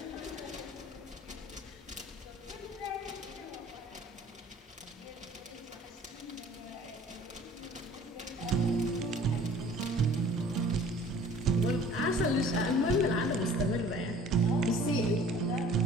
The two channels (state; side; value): normal; both; correlation 0.50